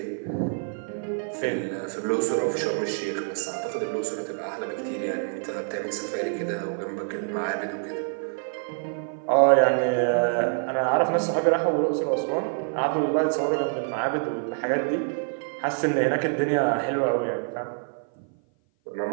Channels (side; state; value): left; silent; 56 dB below the other